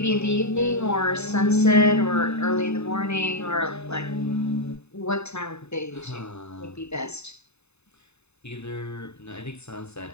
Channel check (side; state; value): right; late; 0.81 ms